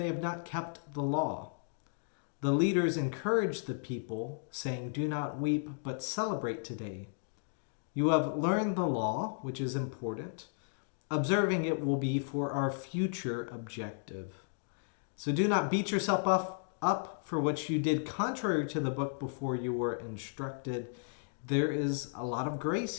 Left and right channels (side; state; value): right; silent; digital silence